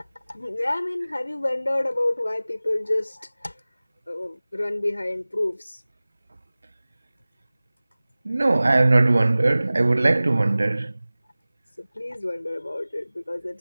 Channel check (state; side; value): inverted; both; correlation -0.98